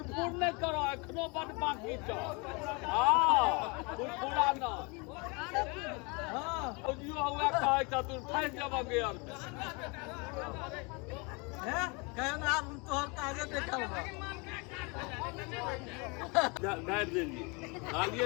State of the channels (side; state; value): right; quieter; 29.9 dB